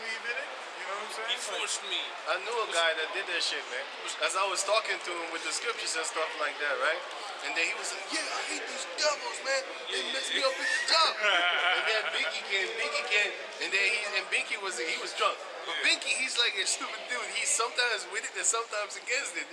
in it. You know what I'm saying? He forced me. I knew a guy that did that shit, man. As I was talking to him with the scriptures and stuff like that, right? And then he was like, yeah, I hate these devils, man. They messed me up at the job. And then Binky came, and then Binky was drunk. But Binky, he's like a stupid dude. He's sometimes with it and sometimes against it.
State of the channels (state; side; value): identical; both; correlation 1.00